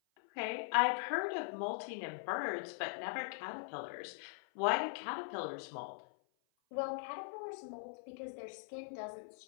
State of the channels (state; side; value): silent; right; 50 dB below the other